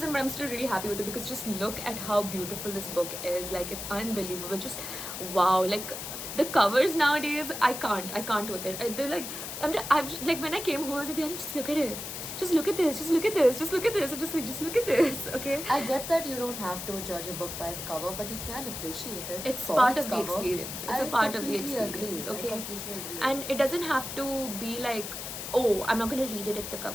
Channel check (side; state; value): left; noise; hiss, 7 dB below the sound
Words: But I'm still really happy with it because just look at how beautiful this book is. Like, it's unbelievable. Just wow. Like, the covers nowadays, I can't with it. They're like, I've like, when I came home, I was like, Diani, just look at it. Just look at this. Just look at this. Just look at this. And just look at this. Okay. I get that you don't have to judge a book by its cover, but you can appreciate it. It's for part its of the cover. experience. It's I a part of the completely experience. agree. Okay. I completely agree. And it doesn't have to be like, oh, I'm not gonna read it if the